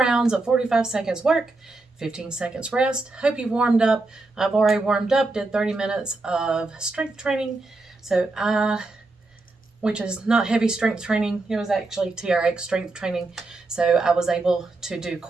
of 45 seconds work, 15 seconds rest. Hope you've warmed up. I've already warmed up, did 30 minutes of strength training. Which is not heavy strength training. It was actually TRX strength training. So I was able to do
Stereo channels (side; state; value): left; quieter; 3.2 dB